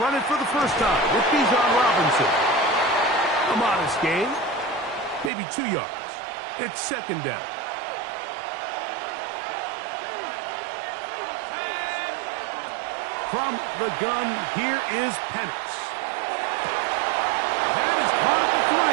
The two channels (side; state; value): left; drops out; at 5.3 s